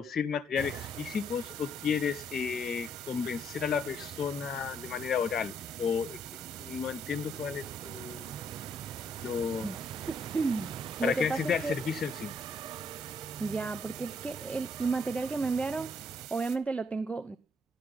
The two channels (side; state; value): both; normal; correlation 0.70